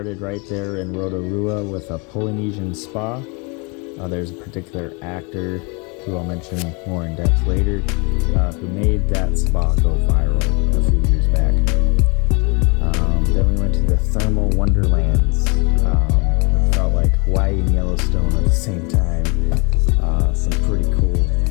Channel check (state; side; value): quieter; right; 31.7 dB